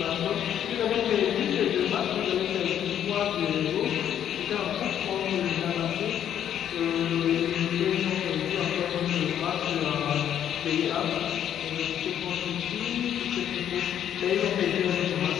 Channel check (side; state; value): right; quieter; 10.0 dB